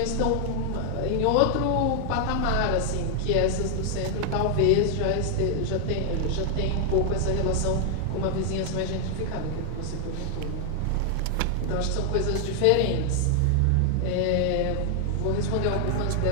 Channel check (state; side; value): different; both; correlation 0.00